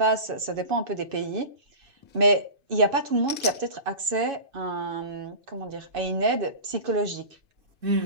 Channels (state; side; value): late; left; 2.6 ms